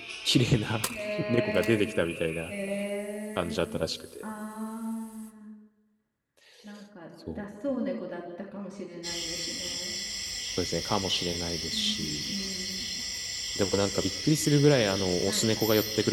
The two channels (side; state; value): both; identical; correlation 1.00